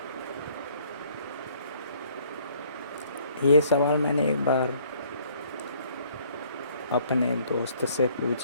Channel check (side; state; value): both; inverted; correlation -0.60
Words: ये सवाल मैंने एक बार अपने दोस्त से